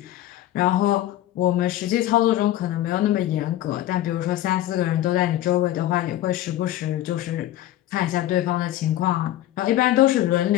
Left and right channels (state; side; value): quieter; right; 13.8 dB